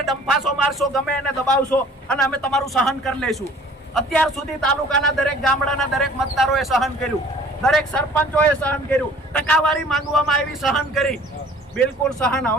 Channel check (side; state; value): both; normal; correlation 0.51